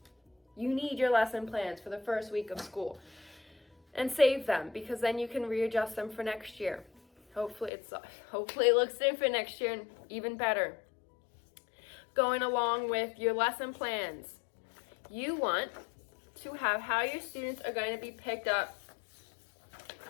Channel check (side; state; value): right; drops out; at 7.7 s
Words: You need your lesson plans for the first week of school. And save them, because then you can readjust them for next year. Hopefully it looks different next year and even better. Going along with your lesson plans, you want to have how your students are going to be picked up